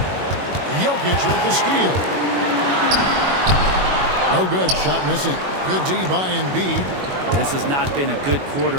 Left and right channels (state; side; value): late; left; 21 ms